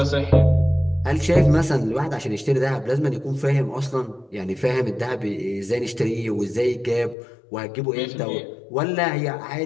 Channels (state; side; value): drops out; right; at 7.2 s